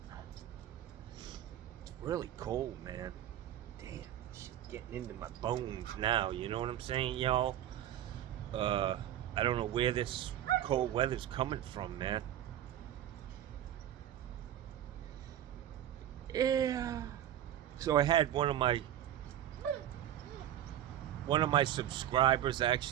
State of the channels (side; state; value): left; quieter; 11.6 dB